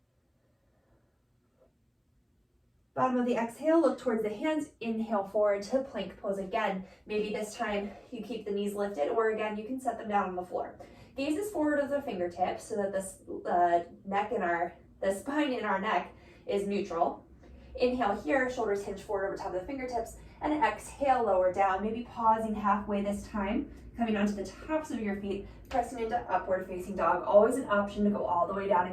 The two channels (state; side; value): identical; both; correlation 1.00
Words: Bottom of the exhale, look towards the hands. Inhale forward to plank pose again. Maybe this time you keep the knees lifted, or again, you can set them down on the floor. Gaze is forward of the fingertips so that the spine in our neck is neutral. Inhale here, shoulders hinge forward over top of the fingertips, and exhale, lower down, maybe pausing halfway this time, coming onto the tops of your feet, pressing into upward facing dog. Always an option to go all the way down